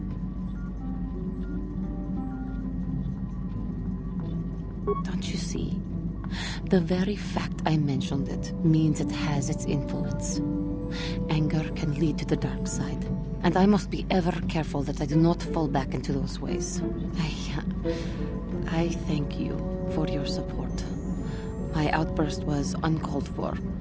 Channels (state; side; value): identical; both; correlation 1.00